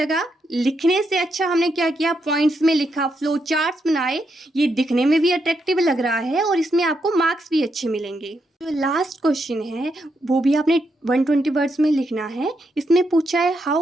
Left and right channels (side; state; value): both; normal; correlation 0.81